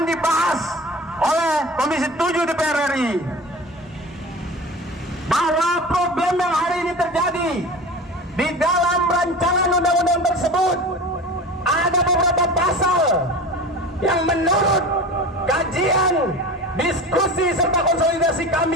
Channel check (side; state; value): both; normal; correlation 0.34